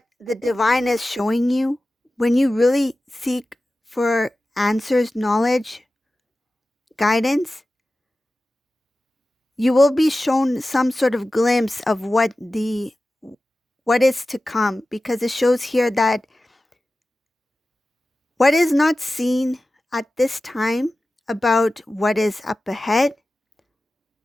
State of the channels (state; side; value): normal; both; correlation 0.95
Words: the divine is showing you, when you really seek for answers, knowledge, guidance, you will be shown some sort of glimpse of what is to come, because it shows here that what is not seen at this time about what is up ahead.